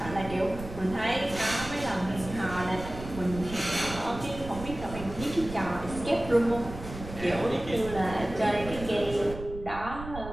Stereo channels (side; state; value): right; noise; rumble, 11 dB below the sound